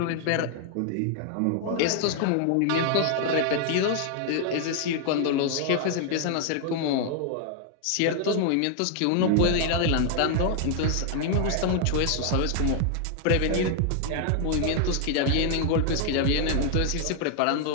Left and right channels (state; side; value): different; both; correlation 0.00